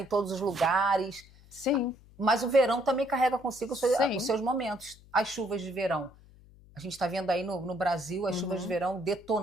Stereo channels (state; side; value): noise; left; hum, 24 dB below the sound